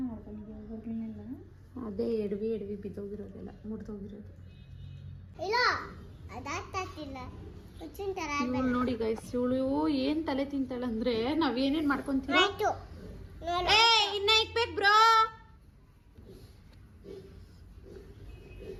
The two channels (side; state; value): both; identical; correlation 1.00